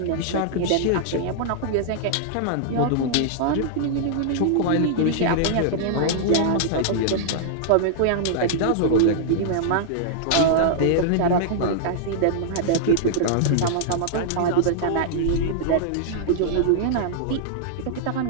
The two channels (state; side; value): different; both; correlation -0.01